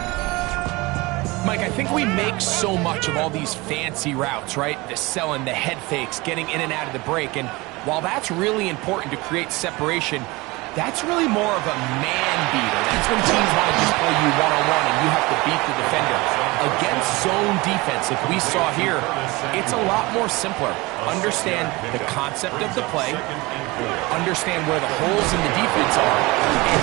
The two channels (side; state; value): left; quieter; 23.0 dB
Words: Mike, I think we make so much of all these fancy routes, right? The selling, the head fakes, getting in and out of the break. And while that's really important to create separation, that's really more of a man beater. That's when teams want to just play you one-on-one and you have to beat the defender. Against zone defense, like we saw here, it's a lot more simpler. Understand the concept of the play, understand where the holes in the defense are, and